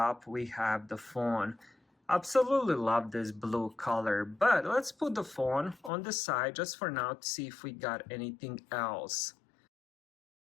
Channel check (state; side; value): drops out; right; at 5.9 s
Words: we have the phone. Absolutely love this blue color, but let's put the phone on the side just for now to see if we got anything else.